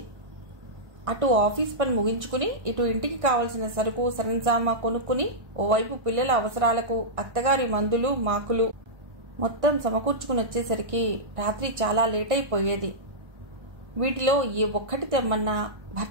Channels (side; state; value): left; late; 1.6 ms